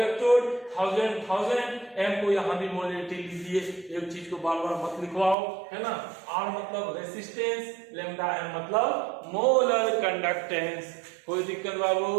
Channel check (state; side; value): drops out; left; at 5.4 s